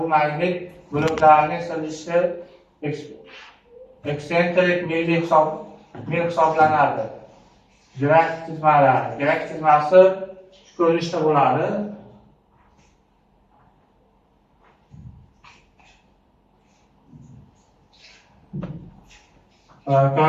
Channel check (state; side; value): identical; both; correlation 1.00